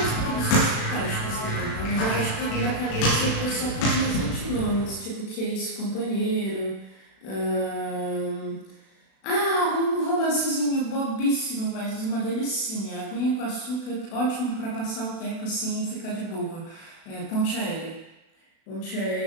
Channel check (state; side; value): late; right; 36 ms